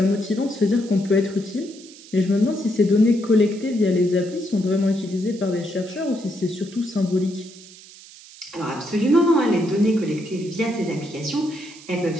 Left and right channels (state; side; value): noise; right; hiss, 20 dB below the sound